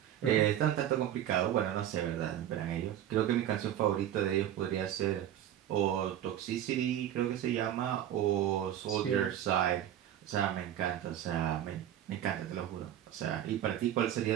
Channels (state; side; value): quieter; left; 11.2 dB